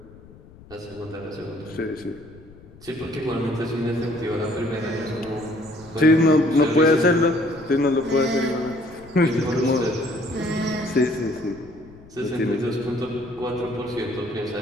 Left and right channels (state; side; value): noise; left; rumble, 22 dB below the sound